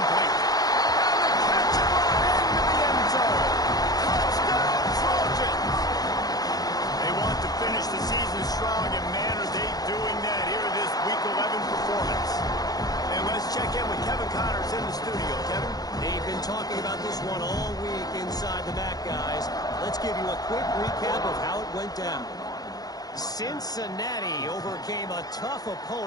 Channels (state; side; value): late; right; 0.19 ms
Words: And the catch right into the end zone. Touchdown, Trojans! They want to finish the season strong, and man, are they doing that here this Week 11 performance. And let's check in with Kevin Connors in the studio. Kevin? They've been talking about this one all week inside the MAC, guys. Let's give you a quick recap of how it went down. Cincinnati overcame a tough